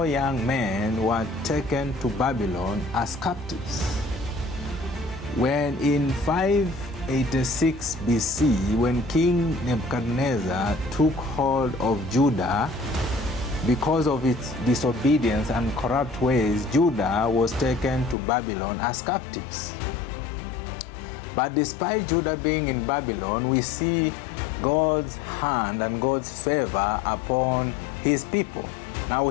young men were taken to Babylon as captives. When in 586 BC, when King Nebuchadnezzar took hold of Judah, because of its disobedience and corrupt ways, Judah was taken to Babylon as captives. But despite Judah being in Babylon, we see God's hand and God's favor upon his people. Now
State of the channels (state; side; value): drops out; right; at 18.2 s